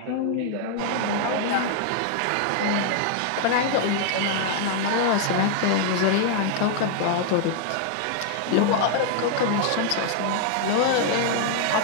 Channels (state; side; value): different; both; correlation 0.00